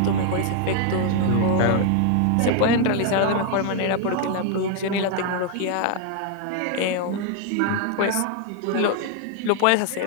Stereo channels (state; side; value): different; both; correlation 0.00